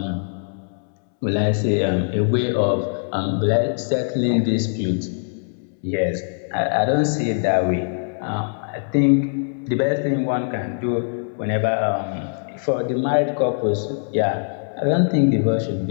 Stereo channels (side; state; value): right; silent; 64 dB below the other